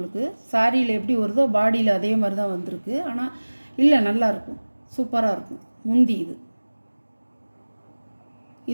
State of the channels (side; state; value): both; inverted; correlation -1.00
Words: சாரியில் எப்படி வருதோ பாடியில் அதே மாதிரி தான் வந்திருக்கு. ஆனால் இல்லை, நல்லாயிருக்கும், சூப்பராக இருக்கும். முந்தி